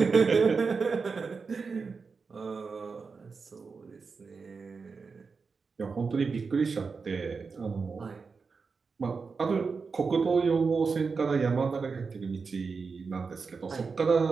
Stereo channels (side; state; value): left; quieter; 4.9 dB